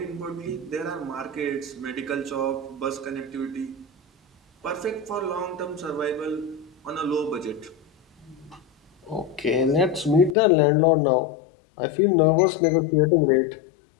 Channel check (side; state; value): right; drops out; at 10.4 s